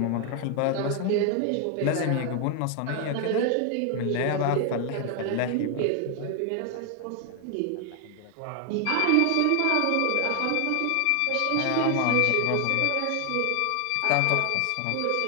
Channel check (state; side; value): different; both; correlation 0.00